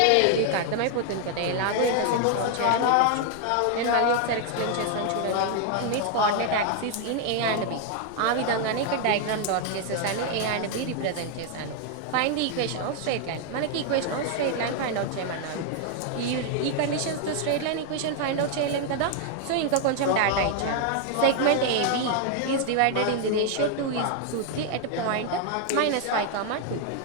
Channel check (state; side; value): different; both; correlation 0.00